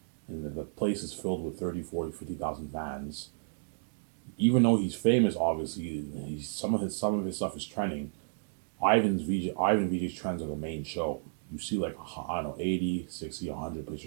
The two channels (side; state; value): left; silent; digital silence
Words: and the place is filled with 30, 40, 50,000 fans, even though he's famous, obviously, some of his stuff is trending. Ivan VJ's trends are the main show. You see like I don't know 80, 60, 100